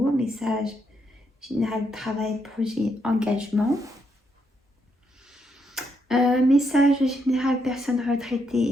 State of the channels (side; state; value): both; normal; correlation 0.78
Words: message général travail, projet, engagement. Message général personne